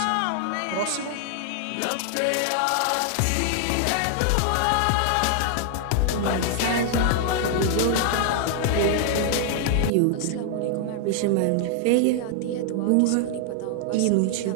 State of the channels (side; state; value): both; different; correlation 0.00